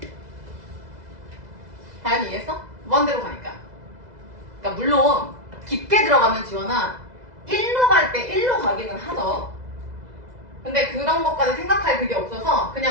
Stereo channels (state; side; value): late; left; 2.0 ms